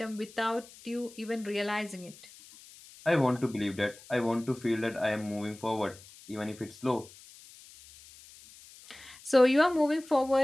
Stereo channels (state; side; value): noise; left; hiss, 21 dB below the sound